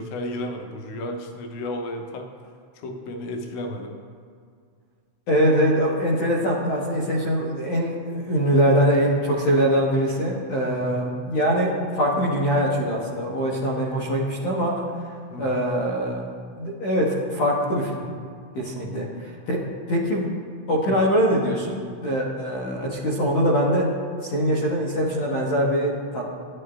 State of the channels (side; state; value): right; late; 15 ms